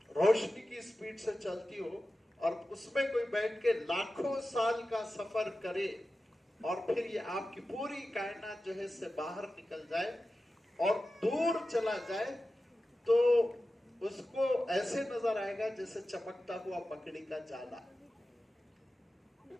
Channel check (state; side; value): normal; both; correlation 0.94